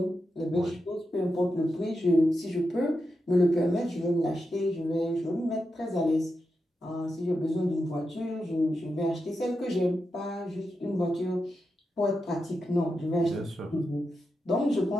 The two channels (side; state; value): both; normal; correlation 0.88